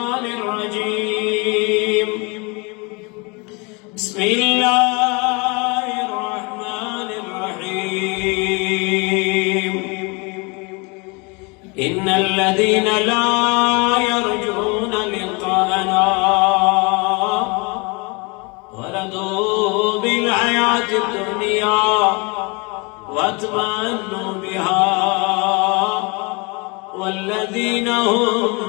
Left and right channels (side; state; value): right; quieter; 29.0 dB